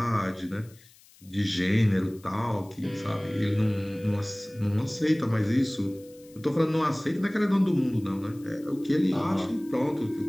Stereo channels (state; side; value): noise; left; hiss, 26 dB below the sound